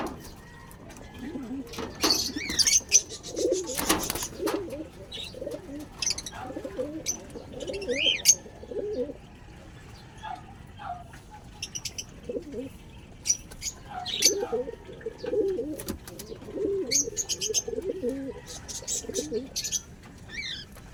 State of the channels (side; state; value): both; identical; correlation 1.00